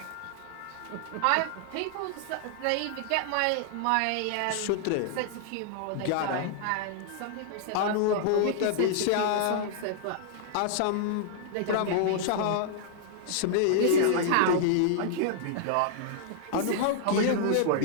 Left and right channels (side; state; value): both; different; correlation -0.01